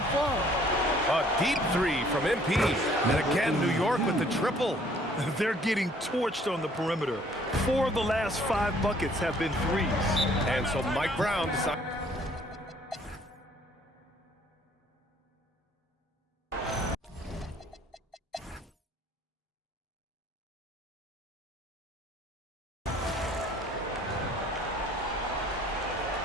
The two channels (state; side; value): normal; both; correlation 0.59